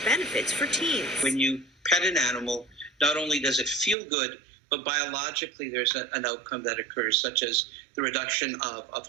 benefits for teens. When you pet an animal, not only does it feel good, but biologically there's an outcome that occurs, such as the reduction of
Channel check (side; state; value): left; drops out; at 4.0 s